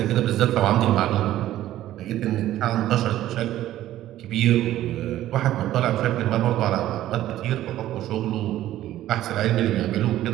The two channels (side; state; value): left; quieter; 13.6 dB